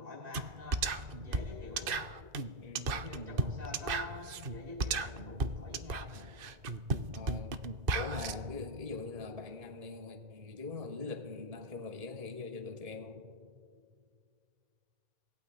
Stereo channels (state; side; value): late; left; 2.0 ms